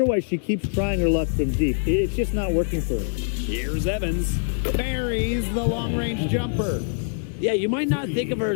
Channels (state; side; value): silent; right; digital silence